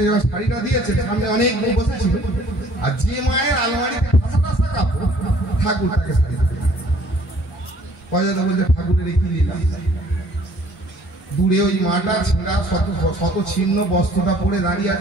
যখন শাড়িটা দিয়েছে, সামনে অনেক বউ বসেছিল, আর যে মায়ের আলমারিতে ঠাসা ঠাসা কাপড়, ঠাকুর তাকে শাড়ি দিয়েছে। অজয় দা বলছে, ঠাকুরের কি লীলা। দূরে ওই মাটা ছেঁড়া শত ছিন্ন বস্ত্রটা পরে দাঁড়িয়ে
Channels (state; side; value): normal; both; correlation 0.57